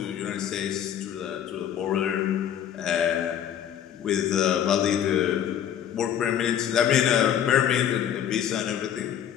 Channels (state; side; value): quieter; right; 9.8 dB